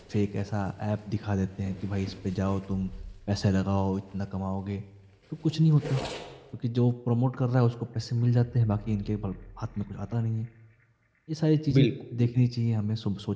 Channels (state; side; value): identical; both; correlation 1.00